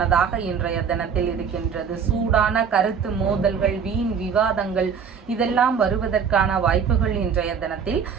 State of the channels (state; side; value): quieter; left; 6.7 dB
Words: இன்றைய தினத்தில் இருக்கின்றது. சூடான கருத்து மோதல்கள், வீண் விவாதங்கள் இதெல்லாம் வருவதற்கான வாய்ப்புகள் இன்றைய தினத்தில்